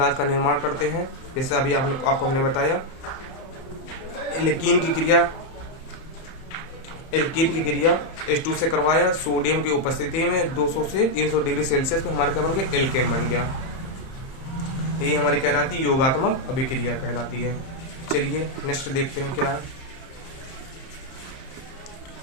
का निर्माण करते हैं। जैसे अभी आपको हमने बताया एल्कीन की क्रिया H2 से करवाया, सोडियम की उपस्थिति में 200 से 300 डिग्री सेल्सियस में हमारा क्या बन गया, एल्केन बन गया। ये हमारी कहलाती है योगात्मक अभिक्रिया कहलाती है। चलिए नेक्स्ट देखते हैं क्या है।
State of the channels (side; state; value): right; late; 31 ms